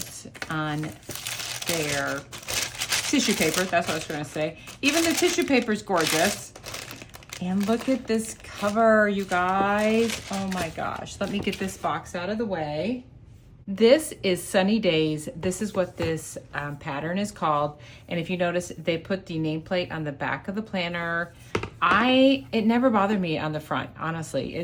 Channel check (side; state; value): both; identical; correlation 1.00